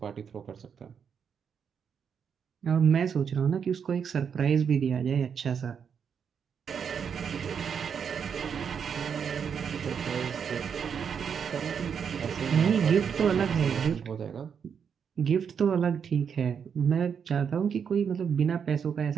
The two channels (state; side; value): quieter; left; 7.1 dB